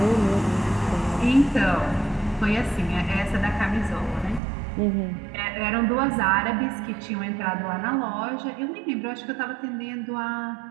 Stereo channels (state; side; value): drops out; left; at 4.4 s